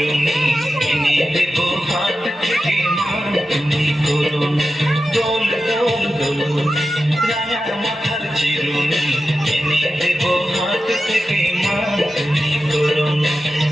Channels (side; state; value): both; normal; correlation 0.92